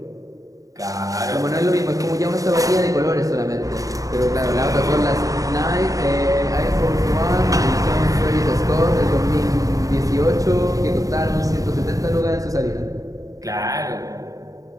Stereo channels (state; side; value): late; left; 0.16 ms